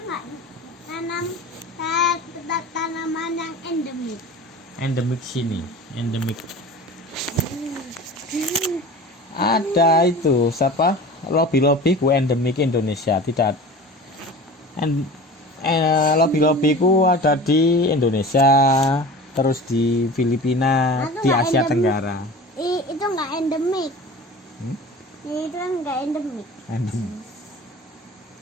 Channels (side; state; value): both; normal; correlation 0.37